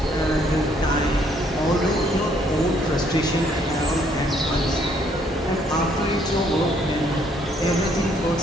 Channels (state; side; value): normal; both; correlation 0.67